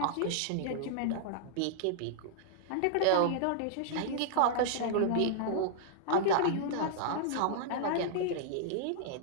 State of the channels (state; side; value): different; both; correlation -0.01